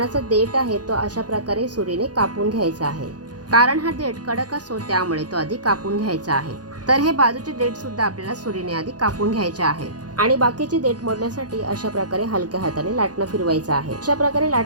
देठ आहे तो अशा प्रकारे सुरीने कापून घ्यायचा आहे. कारण हा देठ कडक असतो त्यामुळे तो आधी कापून घ्यायचा आहे. तर हे बाजूचे देठ सुद्धा आपल्याला सुरीने आधी कापून घ्यायचे आहे आणि बाकीचे देठ मोडण्यासाठी अशा प्रकारे हलक्या हाताने लाटणं फिरवायचं आहे. अशा प्रकारे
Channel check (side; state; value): left; late; 0.69 ms